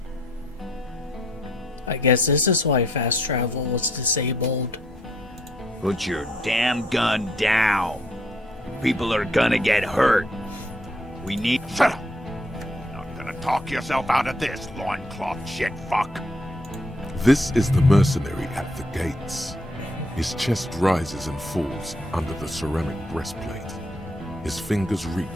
I guess this is why fast travel was disabled. Put your damn gun down. People are gonna get hurt. We need... Shut up! Not gonna talk yourself out of this, loincloth shit fuck. This is the mercenary at the gates. His chest rises and falls under the ceramic breastplate. His fingers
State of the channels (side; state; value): both; normal; correlation 0.69